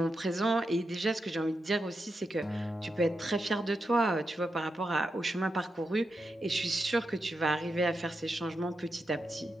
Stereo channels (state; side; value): normal; both; correlation 0.86